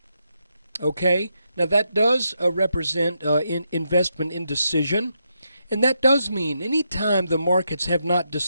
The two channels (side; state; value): both; inverted; correlation -0.82